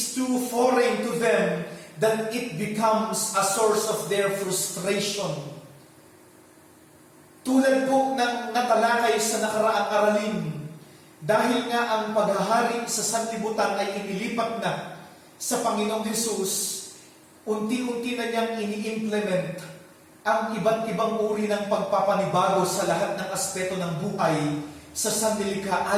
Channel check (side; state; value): both; identical; correlation 1.00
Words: too foreign to them that it becomes a source of their frustration. Tulad po ng natalakay sa nakaraang aralin, dahil nga ang paghahari sa sanlibutan ay inilipat na sa Panginoong Hesus, unti-unti na niyang ini-implement ang iba't ibang uri ng pagpapanibago sa lahat ng aspeto ng buhay sa sanlilikha